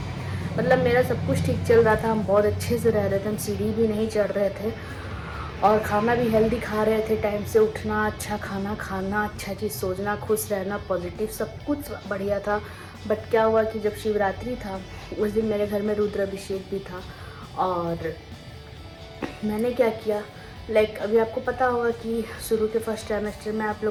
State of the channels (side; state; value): both; identical; correlation 1.00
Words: मतलब मेरा सब कुछ ठीक चल रहा था, हम बहुत अच्छे से रह रहे थे, हम सीढ़ी भी नहीं चढ़ रहे थे और खाना भी हेल्दी खा रहे थे, टाइम से उठना, अच्छा खाना खाना, अच्छा चीज़ सोचना, खुश रहना, पॉजिटिव, सब कुछ बढ़िया था। बट क्या हुआ कि जब शिवरात्रि था उस दिन मेरे घर में रुद्राभिषेक भी था। और मैंने क्या किया, लाइक अभी आपको पता होगा कि शुरू के फर्स्ट ट्राइमेस्टर में आप